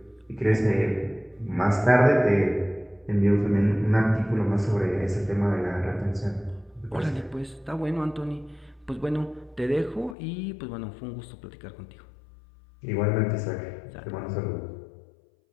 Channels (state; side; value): drops out; right; at 10.2 s